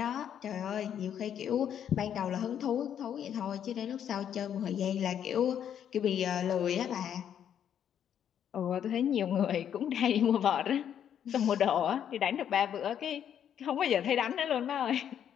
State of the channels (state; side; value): quieter; right; 9.3 dB